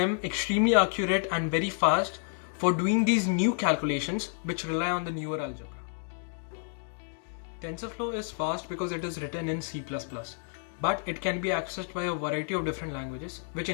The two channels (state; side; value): silent; right; 58 dB below the other